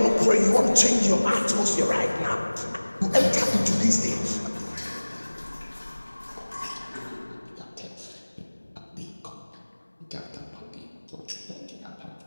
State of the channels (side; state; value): both; inverted; correlation -1.00